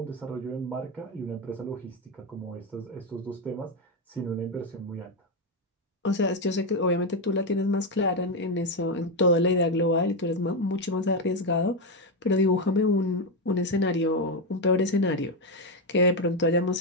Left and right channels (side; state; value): both; normal; correlation 0.08